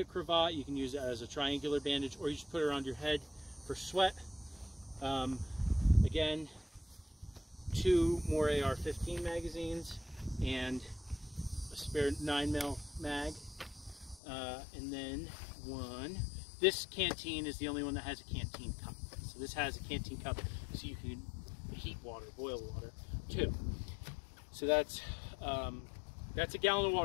cravat. You can use it as a triangular bandage, or you just put it around your head for sweat. Again, 2 more AR-15 magazines and a spare 9mm mag, and then this canteen is the only one that has a canteen cup. So this has a canteen cup, so you can heat water, boil water too. So that's a gallon of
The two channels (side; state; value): right; drops out; at 14.2 s